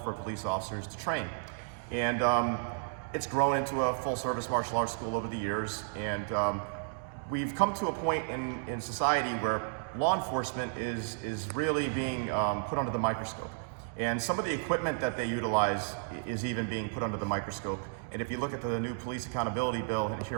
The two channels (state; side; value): silent; left; digital silence